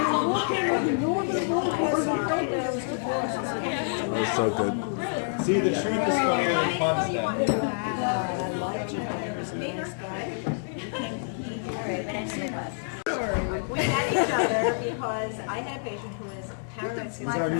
That was so good. See, the truth is funnier than fun stuff. We met each other because I had a patient who was paranoid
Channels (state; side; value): silent; right; digital silence